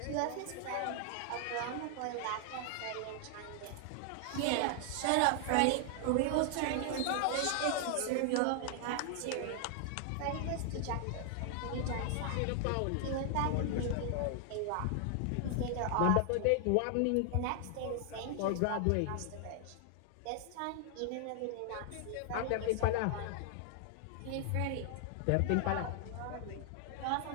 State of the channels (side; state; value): both; different; correlation 0.00